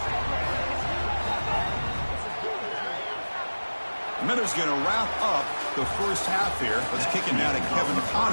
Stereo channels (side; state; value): both; inverted; correlation -1.00